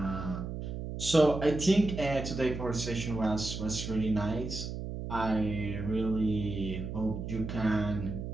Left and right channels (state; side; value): noise; right; hum, 6 dB below the sound